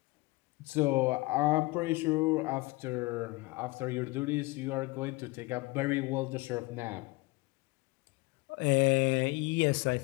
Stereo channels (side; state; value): right; quieter; 23.7 dB